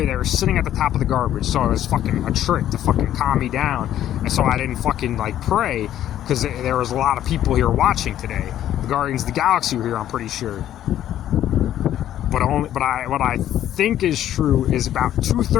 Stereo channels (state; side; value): quieter; right; 11.7 dB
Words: were sitting at the top of the garbage. So it was fucking a trick to fucking calm me down. And so I didn't fucking, like, pray. Because there was a lot of people here watching today. The Guardians of the Galaxy were here, I'm pretty sure. But what I think is true is about